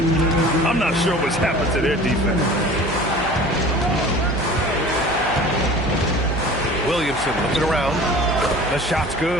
I'm not sure what's happened to their defense. Williamson looking around. The shot's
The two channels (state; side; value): noise; right; hum, 11 dB below the sound